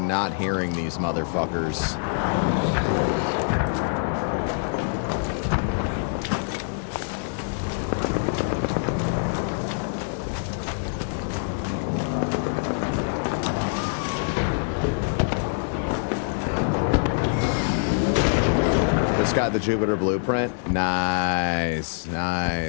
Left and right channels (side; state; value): right; silent; digital silence